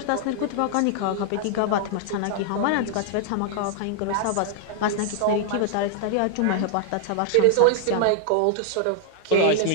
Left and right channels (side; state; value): both; different; correlation 0.00